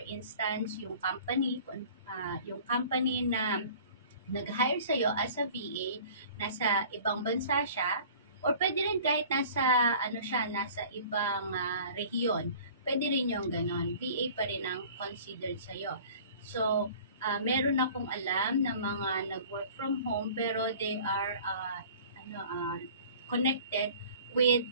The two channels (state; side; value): inverted; both; correlation -0.47